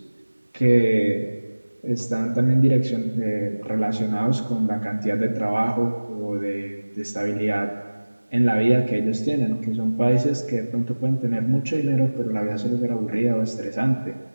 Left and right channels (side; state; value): both; inverted; correlation -1.00